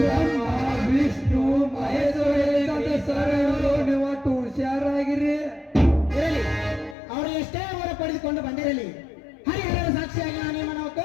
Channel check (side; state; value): right; drops out; at 7.0 s